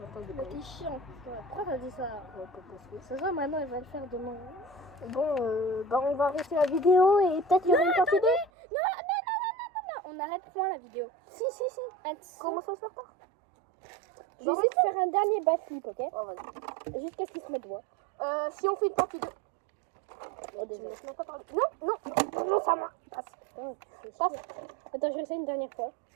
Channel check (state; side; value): drops out; left; at 8.5 s